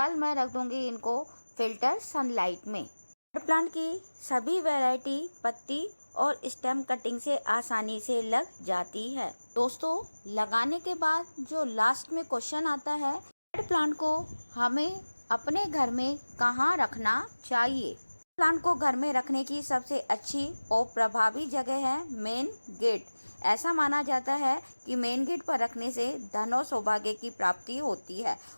मैं रख दूंगी इनको फिल्टर सनलाइट में। प्लांट की सभी वैरायटी पत्ती और स्टेम कटिंग से आसानी से लग जाती है। दोस्तों, लगाने के बाद जो लास्ट में क्वेश्चन आता है, प्लांट को हमें अपने घर में कहाँ रखना चाहिए? प्लांट को घर में रखने की सबसे अच्छी और प्रभावी जगह है मेन गेट। ऐसा माना जाता है कि मेन गेट पर रखने से धन और सौभाग्य की प्राप्ति होती है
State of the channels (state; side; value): inverted; both; correlation -1.00